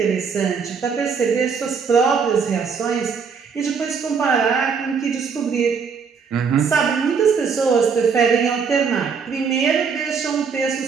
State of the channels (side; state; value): left; quieter; 5.9 dB